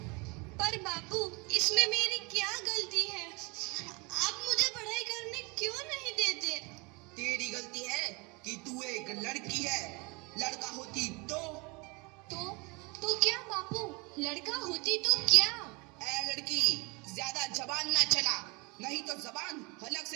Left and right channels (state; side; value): quieter; left; 28.3 dB